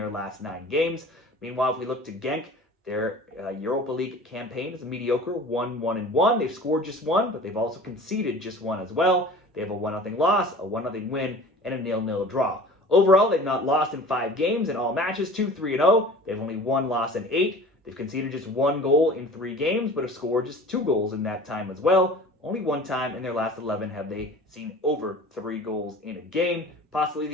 last 9 games. Meanwhile, if we look to Genk, their Europa League campaign is a mediocre 1-1-1. They've scored just 1, but they've also conceded just 1 as well. They have a 1-0 loss, a 1-0 win, and a 0-0 draw. Overall, they've not lost in 5 games in all matches, 2-3-0. They have only 1 loss in 8. They've conceded just 1 goal in 3 games, but have scored just 2 goals in that time as well. Only 1 time in their last 11 have they seen over 3 goals in a game. Possibly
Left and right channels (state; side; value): normal; both; correlation 0.42